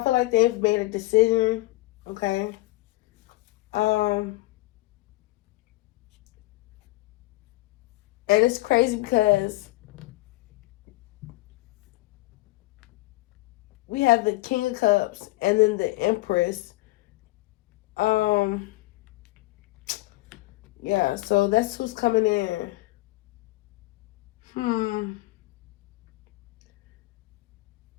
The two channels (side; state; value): right; quieter; 20.2 dB